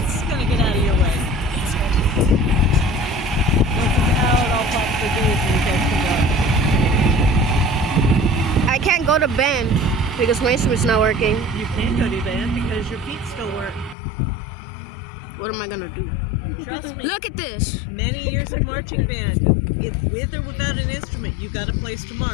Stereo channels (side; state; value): right; drops out; at 14.0 s